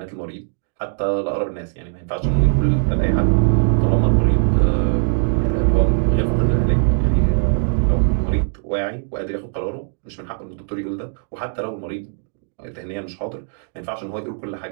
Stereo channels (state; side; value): silent; left; 65 dB below the other